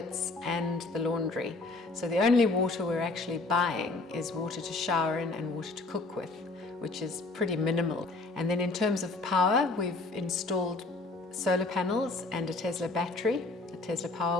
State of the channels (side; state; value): right; quieter; 3.3 dB